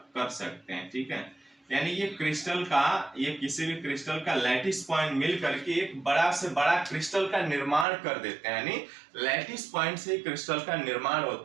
कर सकते हैं, ठीक है। यानी ये क्रिस्टल का, ये किसी भी क्रिस्टल का लैटिस पॉइंट मिल करके एक बड़ा से बड़ा क्रिस्टल का निर्माण कर देते हैं, यानी लैटिस पॉइंट से क्रिस्टल का निर्माण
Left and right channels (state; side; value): drops out; left; at 7.9 s